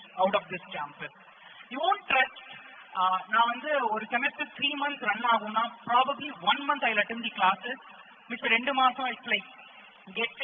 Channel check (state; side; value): identical; both; correlation 1.00